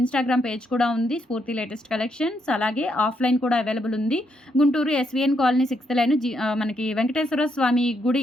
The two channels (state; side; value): normal; both; correlation 0.77